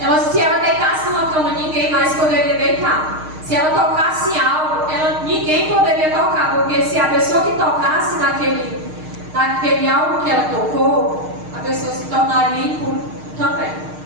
Se ela deitasse numa cama, ninguém mais poderia deitar. Se ela tocasse algo, ninguém poderia tocar, porque se a pessoa que tocasse naquele algo que ela tocou, a pessoa se tornaria impura também.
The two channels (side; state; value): left; late; 6.5 ms